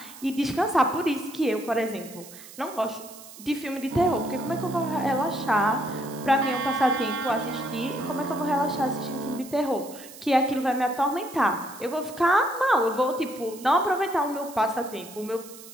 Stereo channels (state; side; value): noise; right; hiss, 17 dB below the sound